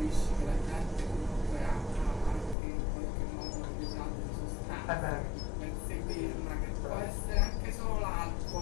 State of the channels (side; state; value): right; drops out; at 2.6 s